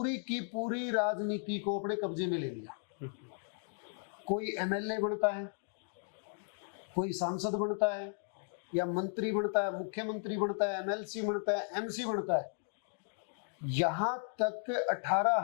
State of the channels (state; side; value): silent; right; 54 dB below the other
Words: की पूरी राजनीति को अपने कब्जे में ले लिया। कोई एमएलए बनता है, कोई सांसद बनता है या मंत्री बनता है, मुख्यमंत्री बनता है, एमएलसी बनता है, एमसी बनता है। यहां तक